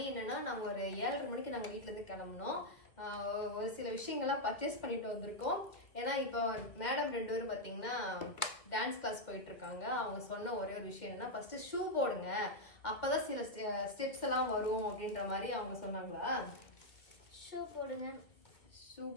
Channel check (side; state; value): right; late; 1.8 ms